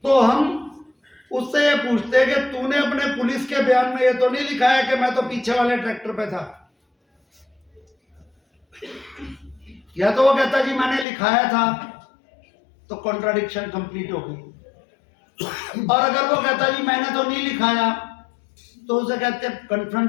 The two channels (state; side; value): drops out; right; at 11.1 s